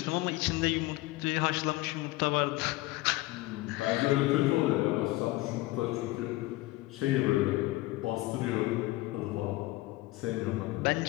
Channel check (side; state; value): right; quieter; 19.4 dB